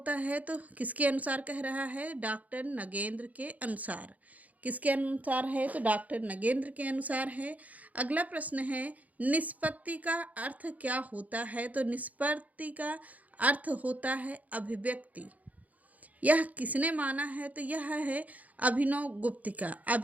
है? तो किसके अनुसार कह रहा है? डॉक्टर नगेंद्र के अनुसार। किसके अनुसार है? तो डॉक्टर नगेंद्र के अनुसार है। अगला प्रश्न है निष्पत्ति का अर्थ क्या होता है? तो निष्पत्ति का अर्थ होता है अभिव्यक्ति। यह किसने माना है? तो यह है अभिनव गुप्त का।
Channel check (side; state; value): left; late; 0.075 ms